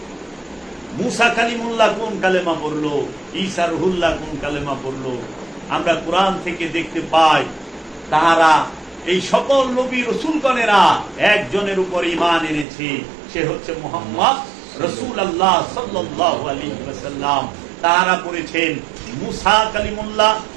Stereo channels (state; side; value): drops out; left; at 12.7 s